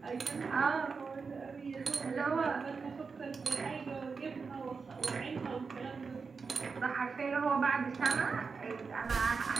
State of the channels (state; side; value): quieter; left; 5.0 dB